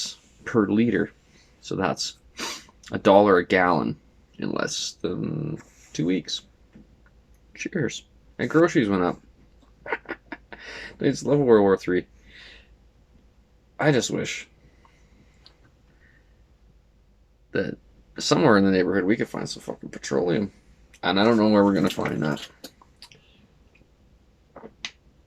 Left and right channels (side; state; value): both; identical; correlation 1.00